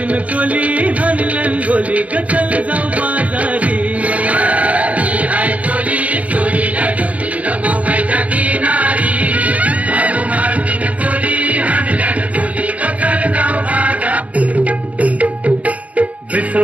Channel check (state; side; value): late; left; 0.067 ms